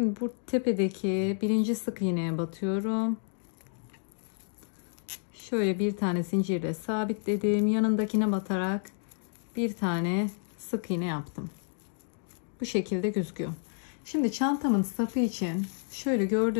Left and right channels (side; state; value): right; silent; digital silence